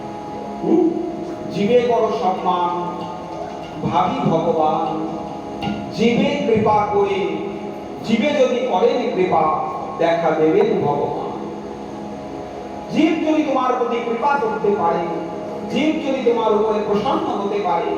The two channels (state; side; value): identical; both; correlation 1.00